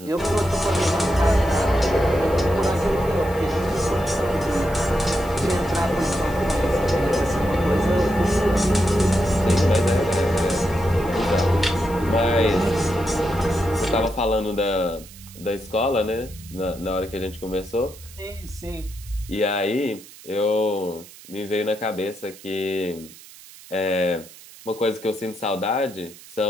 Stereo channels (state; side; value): noise; right; hiss, 20 dB below the sound